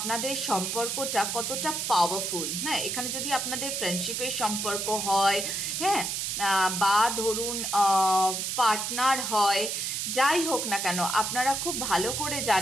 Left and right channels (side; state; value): right; noise; hiss, 2 dB below the sound